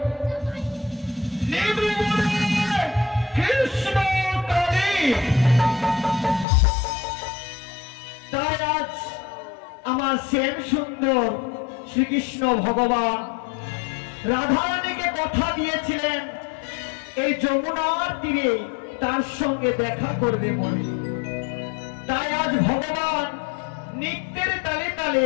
কৃষ্ণ কালী। তাই আজ আমার শ্যাম সুন্দর শ্রীকৃষ্ণ ভগবান রাধারানীকে কথা দিয়েছিলেন এই যমুনার তীরে তার সঙ্গে দেখা করবে বলে। তাই আজ ভগবান নৃত্যের তালে তালে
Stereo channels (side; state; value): right; drops out; at 6.5 s